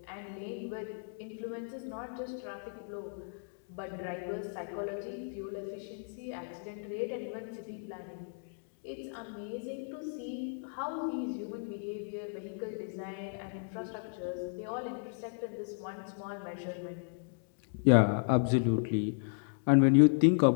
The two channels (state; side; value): silent; right; digital silence